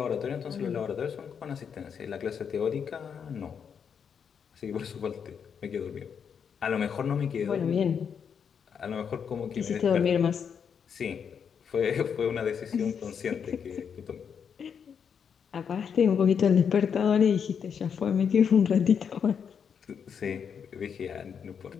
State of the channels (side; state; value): right; quieter; 7.1 dB